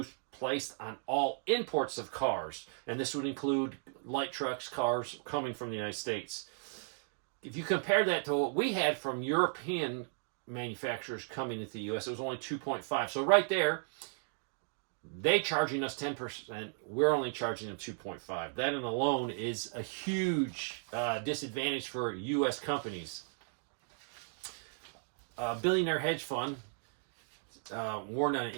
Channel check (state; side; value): silent; left; digital silence